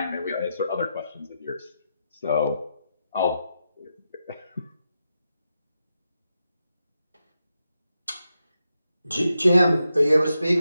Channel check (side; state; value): both; inverted; correlation -0.86